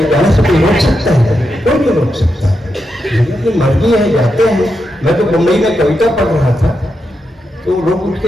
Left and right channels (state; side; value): normal; both; correlation 0.86